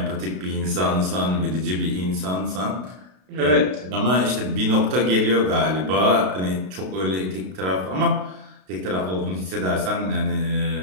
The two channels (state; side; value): late; left; 32 ms